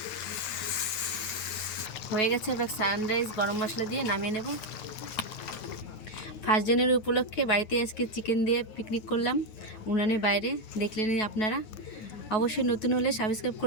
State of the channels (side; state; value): right; late; 9.3 ms